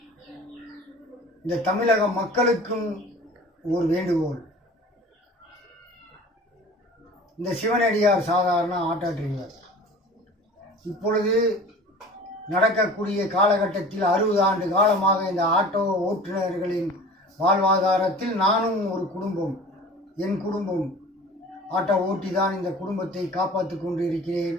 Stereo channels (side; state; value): both; normal; correlation 0.42